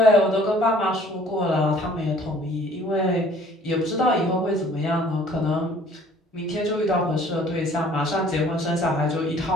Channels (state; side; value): normal; both; correlation 0.55